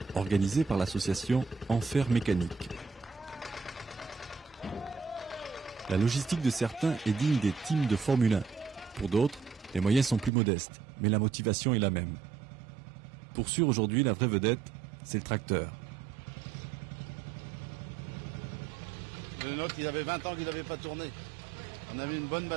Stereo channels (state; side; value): drops out; left; at 10.3 s